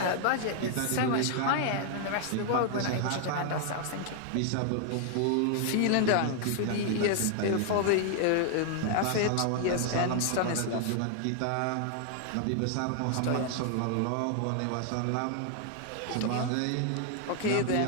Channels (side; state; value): both; different; correlation 0.00